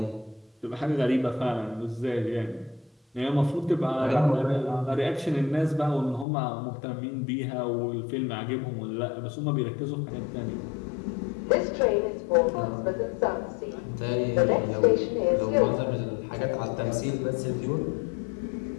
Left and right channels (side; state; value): right; drops out; at 6.2 s